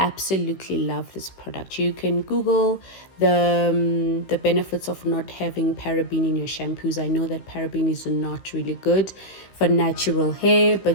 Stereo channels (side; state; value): right; late; 16 ms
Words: love this product. You can Google the benefits of not having paraben in your shampoos. I know that paraben is not really good for natural hair,